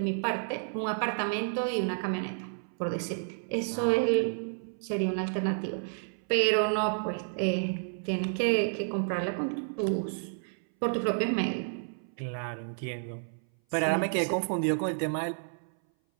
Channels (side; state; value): left; silent; 57 dB below the other